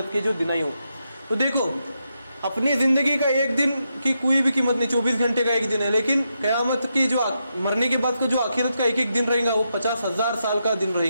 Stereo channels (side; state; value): both; inverted; correlation -0.84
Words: کے جو دن ہی ہو۔ تو دیکھو اپنی زندگی کا ایک دن کی کوئی بھی قیمت نہیں، 24 گھنٹے کا ایک دن ہے، لیکن قیامت کی جو مرنے کے بعد کا جو آخرت کا ایک ایک دن رہے گا وہ 50,000 سال کا دن رہے